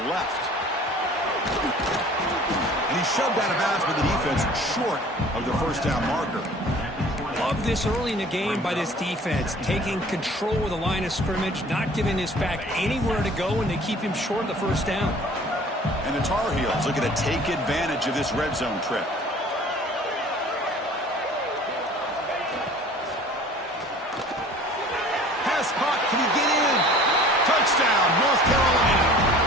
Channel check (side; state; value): both; normal; correlation 0.48